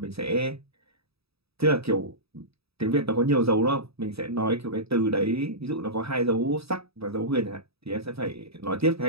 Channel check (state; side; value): late; left; 0.77 ms